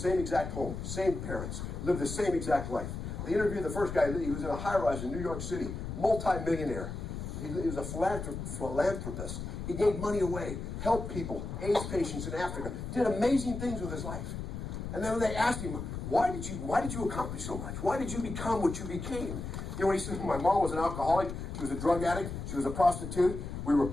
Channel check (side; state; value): left; noise; rumble, 6 dB below the sound